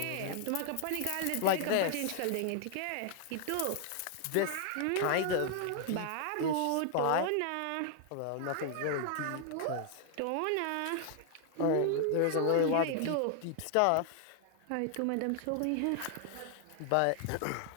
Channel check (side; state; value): both; different; correlation 0.00